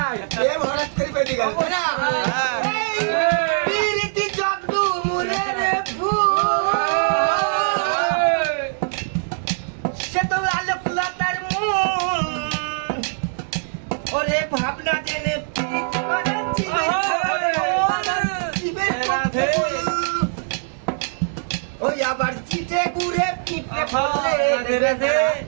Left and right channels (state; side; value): silent; left; digital silence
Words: প্রেম হঠাৎ করে বেরিয়ে গেল তাই না? এই পীড়িতি জগদু মুরের ফুল সে তো আলোকলতার মূল ওরে ভাবনা জেনে পীড়িত করাচ্ছে ওই আবার চিটে গুড়ে পিঁপড়ে ফলে